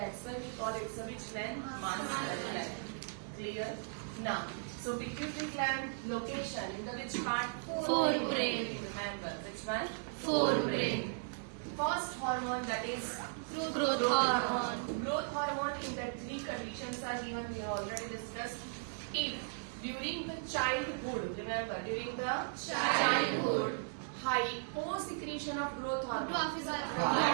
why we call it the which gland? Master gland. Clear? Now, so pituitary gland location in the which part? Forebrain. Remember which one? Forebrain. First hormone, that is Growth hormone. Growth hormone in the three conditions are given. We have already discussed. If during the childhood, remember during the childhood, hyposecretion of growth hormone. Dwarfism.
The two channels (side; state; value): left; silent; digital silence